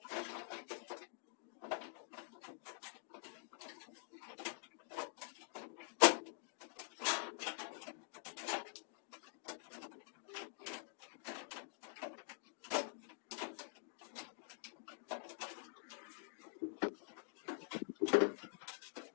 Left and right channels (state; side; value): silent; right; digital silence